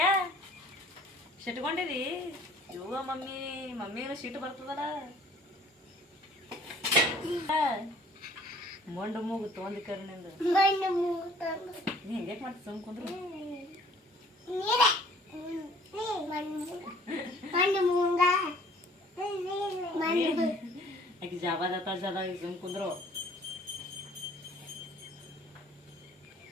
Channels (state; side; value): normal; both; correlation 0.55